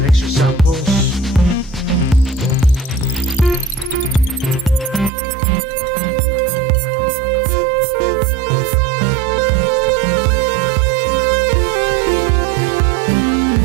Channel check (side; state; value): left; drops out; at 5.1 s